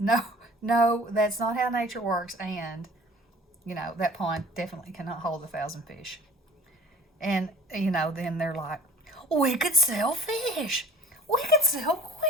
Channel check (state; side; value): normal; both; correlation 0.48